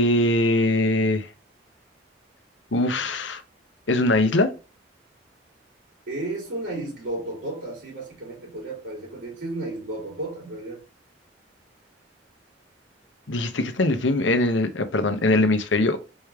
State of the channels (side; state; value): both; normal; correlation 0.35